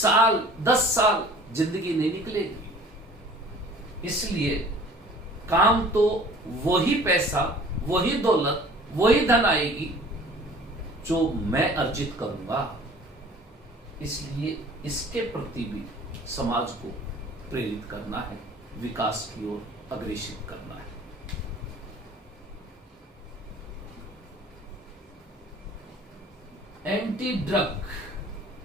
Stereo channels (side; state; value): both; normal; correlation 0.48